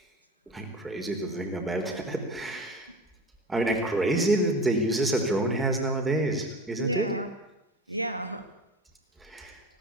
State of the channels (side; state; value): both; normal; correlation 0.33